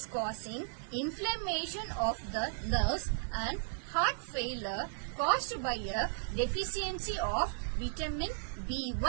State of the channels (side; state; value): left; silent; 54 dB below the other